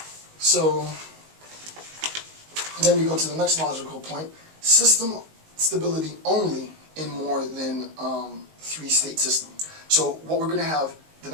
So then we go to the next logical point: system stability only in more than 3-state system. So what we're going to have, the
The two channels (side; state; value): left; late; 19 ms